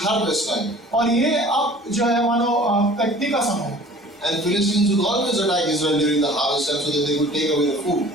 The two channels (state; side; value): normal; both; correlation 0.47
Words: harvest time. और ये अब जो है मानो कटनी का समय है। And Philistines would always attack Israel during the harvest time so that they would take away the food.